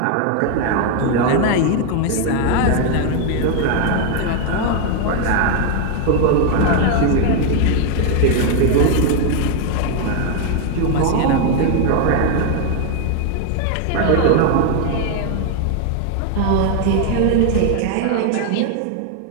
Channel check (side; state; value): both; different; correlation 0.00